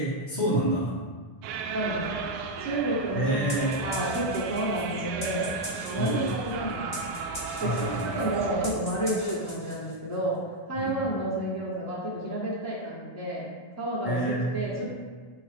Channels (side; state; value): right; late; 1.3 ms